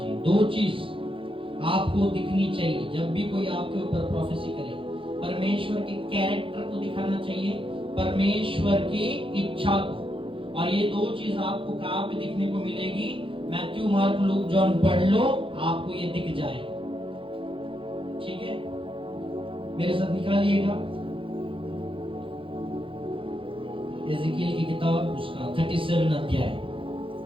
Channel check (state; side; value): late; left; 0.25 ms